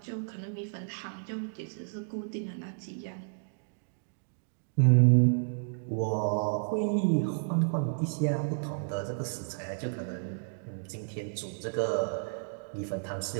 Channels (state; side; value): silent; left; digital silence